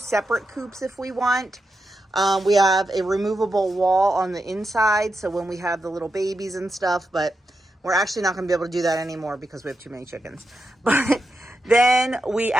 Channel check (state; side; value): normal; both; correlation 0.87